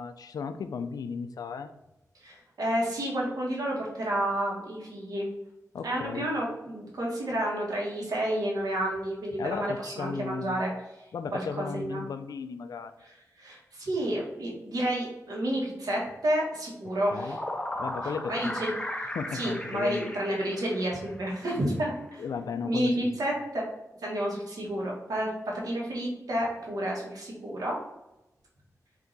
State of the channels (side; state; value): both; normal; correlation 0.77